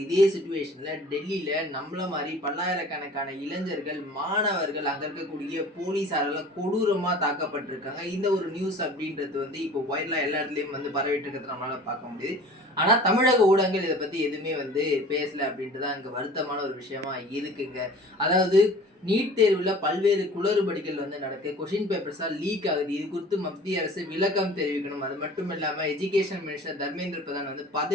இதே சிச்சுவேஷன்ல டெல்லியில நம்மள மாதிரி பல்லாயிரக்கணக்கான இளைஞர்கள், மாணவர்கள், அங்க இருக்கக்கூடிய போலீஸாரால கொடூரமா தாக்கப்பட்டிருக்காங்க. இந்த ஒரு நியூஸ் அப்படின்றது வந்து இப்போ வைரலா எல்லா இடத்துலயும் வந்து பரவிட்டு இருக்கிறத நம்மளால பார்க்க முடியுது. ஆனா தமிழக ஊடகங்கள் இதை பத்தி எதுவுமே வந்து பேசல அப்படின்ட்டு தான் இங்க வருத்தமான ஒரு விஷயமா இருக்குங்க. அதாவது நீட் தேர்வுல பல்வேறு குளறுபடிகள் வந்து நடக்கு. கொஸ்டின் பேப்பர்ஸா லீக் ஆகுது. இது குறித்து மத்திய அரசு விளக்கம் தெரிவிக்கணும். அது மட்டும் இல்லாம எஜுகேஷன் மினிஸ்டர் தர்மேந்திர பிரதான் வந்து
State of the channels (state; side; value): normal; both; correlation 0.45